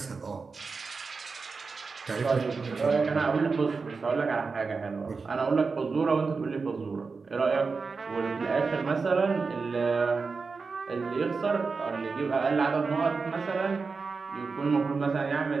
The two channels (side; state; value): left; quieter; 4.6 dB